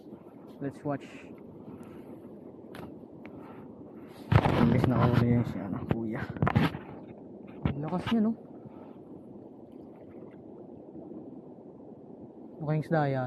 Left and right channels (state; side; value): identical; both; correlation 1.00